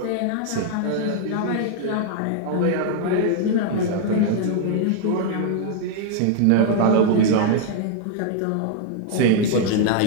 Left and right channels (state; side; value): different; both; correlation -0.01